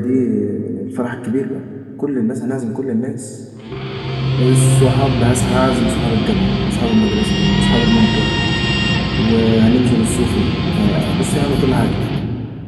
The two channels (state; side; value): identical; both; correlation 1.00